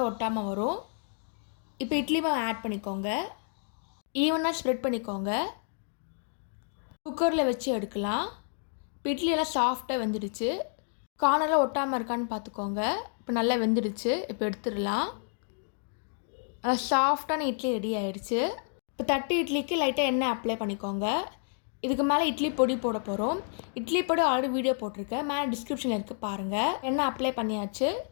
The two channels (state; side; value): silent; right; 58 dB below the other